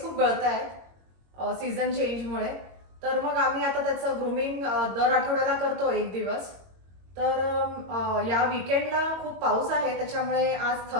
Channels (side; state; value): left; late; 22 ms